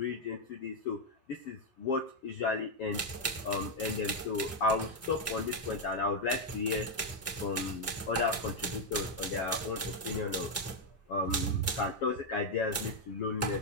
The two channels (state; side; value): normal; both; correlation 0.01